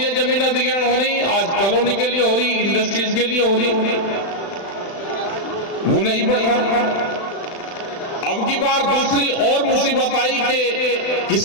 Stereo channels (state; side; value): late; right; 35 ms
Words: जमीन अधिग्रहण हो रही, आज कॉलोनी के लिए हो रही, इंडस्ट्रीज के लिए हो रही, वो नहीं बढ़ रहा। अब की बार दूसरी और मुसीबत आई कि